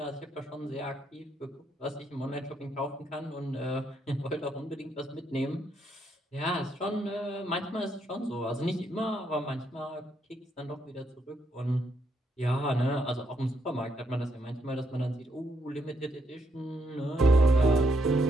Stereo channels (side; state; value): both; normal; correlation 0.76